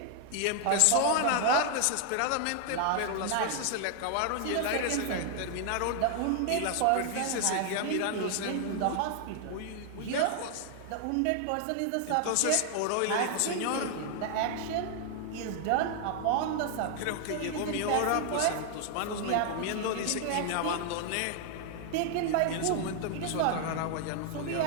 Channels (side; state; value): both; different; correlation 0.00